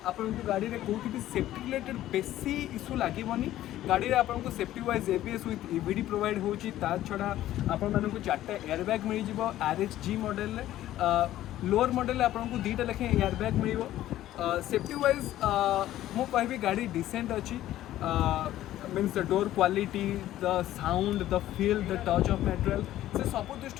आपन को गाड़ी रे कोठी भी सेफ्टी रिलेटेड बेसी इशू लागिवनी। गाड़ी रे आपन को safety wise ABS with EBD provide होची। ता छडा आपन मान को 4टा एयरबैग मिल जिवो RXG मॉडल रे। लोअर मॉडल आपन को 2टा लेखे एयरबैग मिलिवो। सेफ्टी वाइज मु कहबी गाड़ी डिसेंट अच्छी। Means the door quality the sound the feel the touch of material से सब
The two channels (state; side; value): quieter; right; 13.7 dB